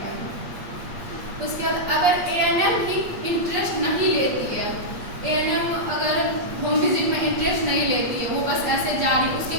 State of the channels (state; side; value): late; left; 8.5 ms